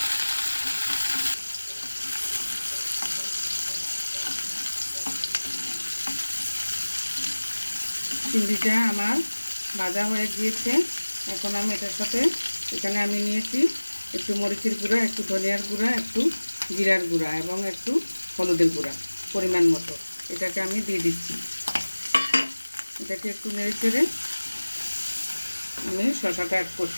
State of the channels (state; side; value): inverted; both; correlation -1.00